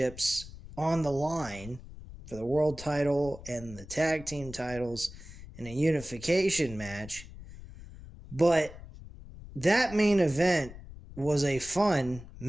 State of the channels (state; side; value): noise; left; rumble, 16 dB below the sound